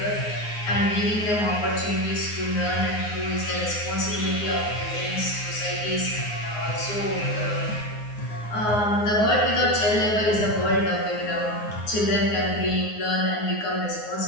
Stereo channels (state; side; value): late; right; 9.5 ms